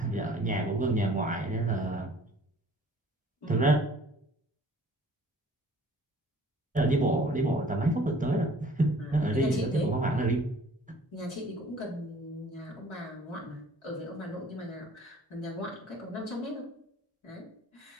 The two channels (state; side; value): normal; both; correlation 0.53